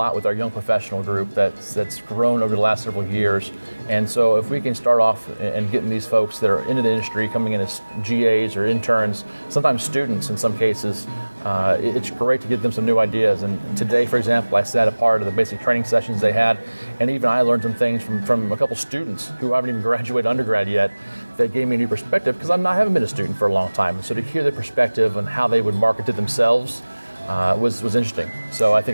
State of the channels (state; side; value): inverted; both; correlation -1.00